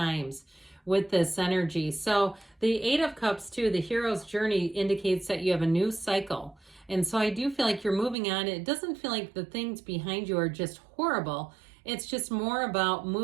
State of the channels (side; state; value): left; drops out; at 8.2 s